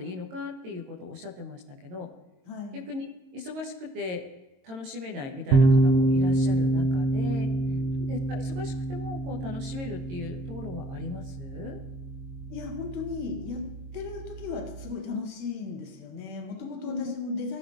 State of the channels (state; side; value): late; left; 22 ms